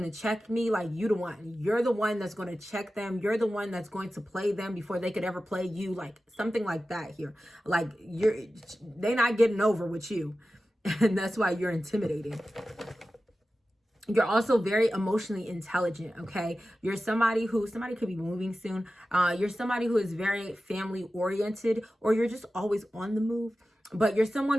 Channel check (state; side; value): normal; both; correlation 0.94